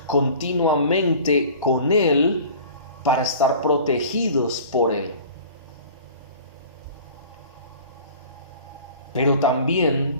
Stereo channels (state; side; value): inverted; both; correlation -0.44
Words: continuamente con Él para estar protegidos por Él. Pero